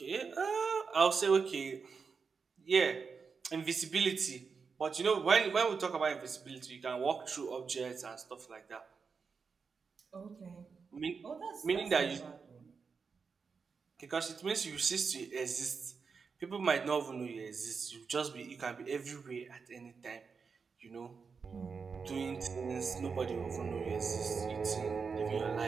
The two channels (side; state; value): left; quieter; 5.4 dB